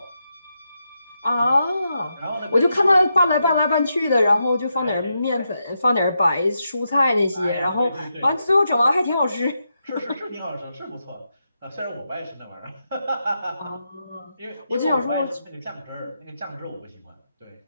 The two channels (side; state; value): both; inverted; correlation -0.85